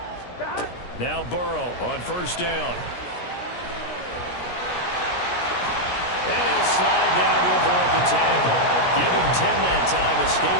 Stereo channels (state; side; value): late; right; 17 ms